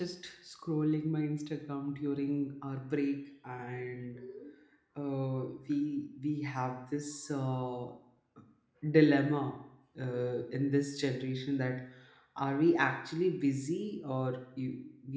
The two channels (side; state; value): both; identical; correlation 1.00